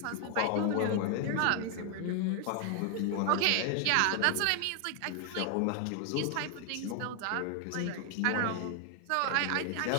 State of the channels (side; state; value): both; different; correlation 0.00